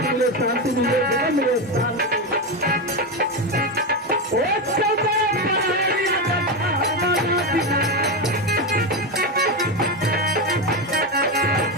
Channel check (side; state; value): both; normal; correlation 0.13